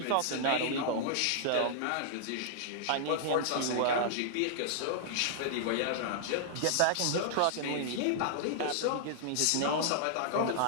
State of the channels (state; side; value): different; both; correlation -0.01